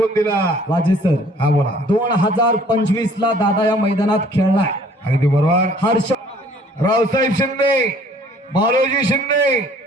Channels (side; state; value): both; normal; correlation 0.56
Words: दिला. वाजे सर हा बोला. 2025 ला दादा या मैदानात खेळलाय. अगदी बरोबर. हर्ष रावसाहेब शिंदे मालोजी शिंदे